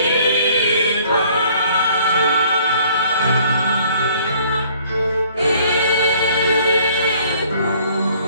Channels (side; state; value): both; inverted; correlation -0.58